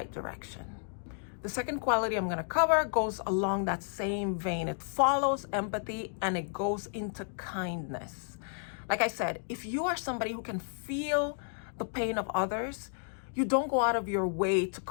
direction. The second quality I'm going to cover goes along that same vein. It follows empathy and it goes into kindness. Like I said, if you are somebody who can feel the pain of others, you don't go out of your way to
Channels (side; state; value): right; silent; digital silence